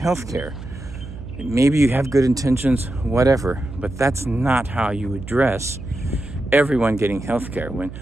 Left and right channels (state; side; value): noise; right; hum, 12 dB below the sound